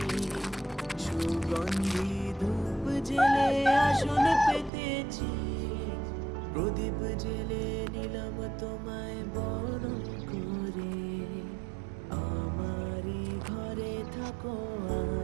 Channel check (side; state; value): left; drops out; at 4.7 s